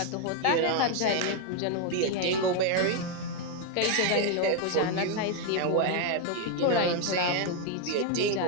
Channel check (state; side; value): different; both; correlation 0.01